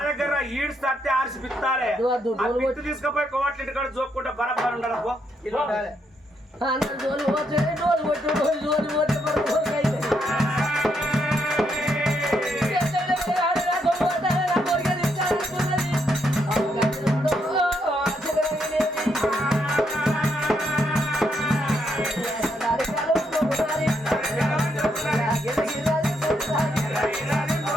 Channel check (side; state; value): both; normal; correlation 0.77